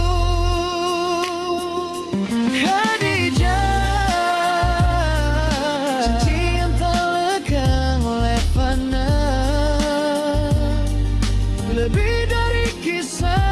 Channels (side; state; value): both; identical; correlation 1.00